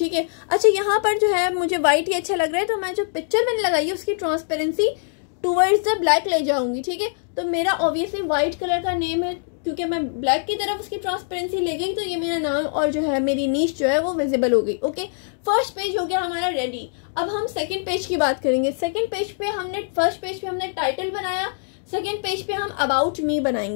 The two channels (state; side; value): silent; right; digital silence